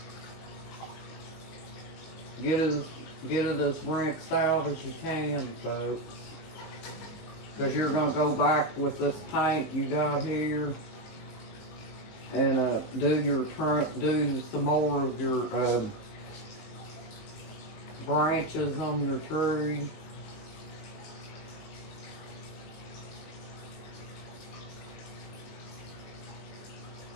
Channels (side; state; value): right; late; 19 ms